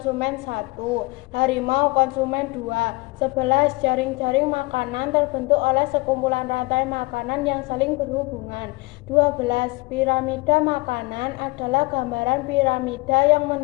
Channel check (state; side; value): quieter; right; 24.7 dB